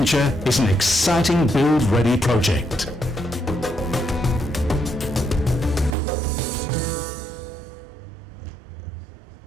is an exciting build-ready project.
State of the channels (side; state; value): left; drops out; at 6.0 s